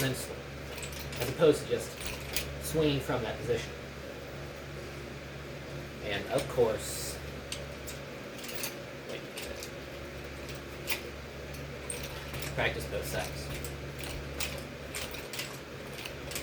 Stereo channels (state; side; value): identical; both; correlation 1.00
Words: then swing, as opposed to just swinging from that position. And of course, practice both sides.